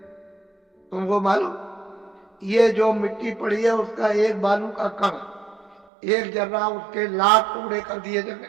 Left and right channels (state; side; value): drops out; left; at 5.9 s